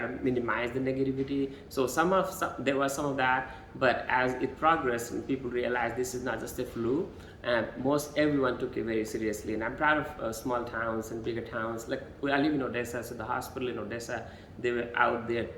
to minimize the negativity. So there was some of that, but as it progressed and people realized this is not just a flu, everyone took it very seriously. And I'm proud of small towns and bigger towns. Like I live in Odessa, so the hospital in Odessa, they were out there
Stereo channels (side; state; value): both; identical; correlation 1.00